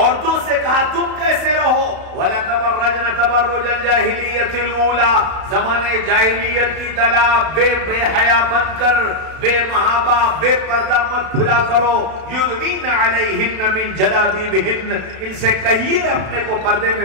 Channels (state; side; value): late; left; 32 ms